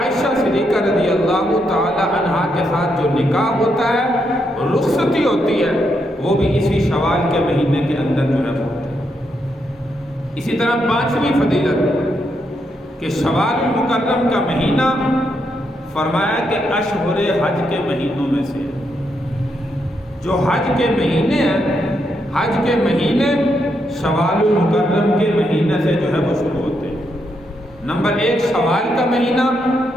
صدیقہ رضی اللہ تعالی عنہا کے ساتھ جو نکاح ہوتا ہے، رخصتی ہوتی ہے، وہ بھی اسی شوال کے مہینے کے اندر جو ہے ہوتا ہے۔ اسی طرح پانچویں فضیلت کہ شوال المکرم کا مہینہ فرمایا کہ اشہر حج کے مہینوں میں سے، جو حج کے مہینے ہیں، حج کے مہینے شوال المکرم کے مہینے سے جو ہے وہ شروع ہوتے ہیں۔ نمبر ایک شوال کا مہینہ،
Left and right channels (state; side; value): normal; both; correlation 0.80